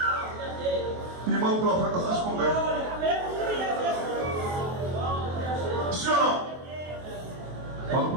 e manda o profeta se esconder. Sim ou não? Manda o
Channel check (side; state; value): left; late; 23 ms